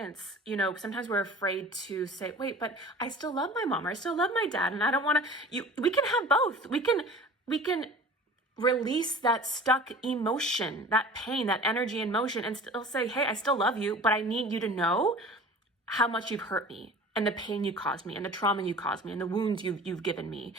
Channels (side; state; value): both; normal; correlation 0.41